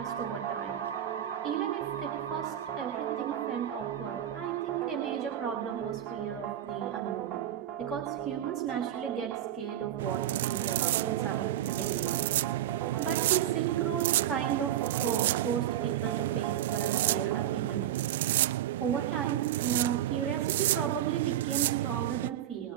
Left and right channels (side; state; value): left; quieter; 11.3 dB